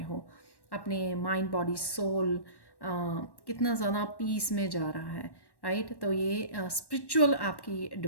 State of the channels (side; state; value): right; late; 1.1 ms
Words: हो, अपने माइंड बॉडी सोल कितना ज़्यादा पीस में जा रहा है, राइट। तो ये स्पिरिचुअल आपकी